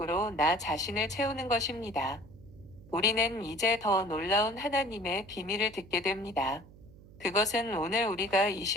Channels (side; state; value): right; noise; hum, 21 dB below the sound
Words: 나 자신을 채우는 것입니다. 우리는 이제 더 놀라운 하나님의 비밀을 듣게 됩니다. 그것은 오늘 우리가 이